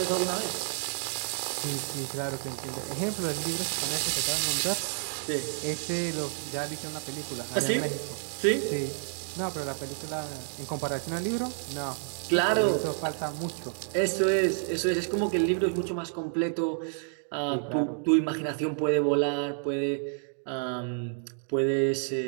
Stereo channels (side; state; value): left; silent; 58 dB below the other